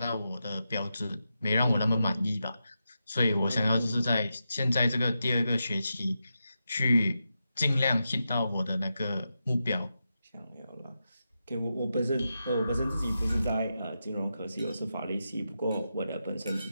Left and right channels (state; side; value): inverted; both; correlation -0.88